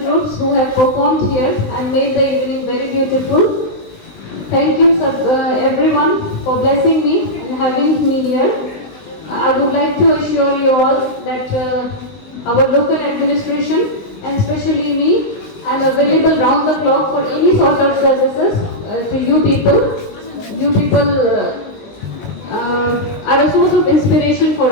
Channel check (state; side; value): late; right; 20 ms